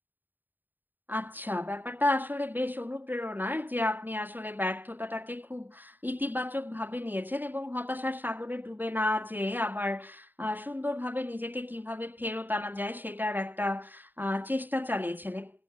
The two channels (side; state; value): left; late; 0.091 ms